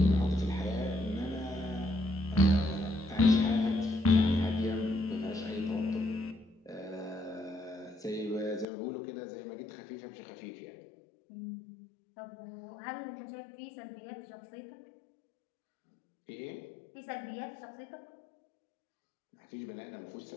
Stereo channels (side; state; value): right; drops out; at 8.7 s